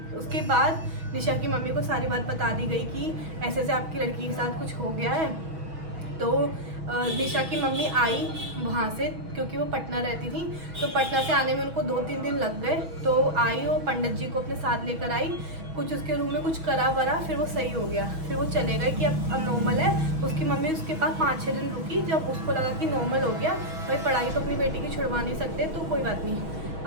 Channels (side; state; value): left; late; 6.2 ms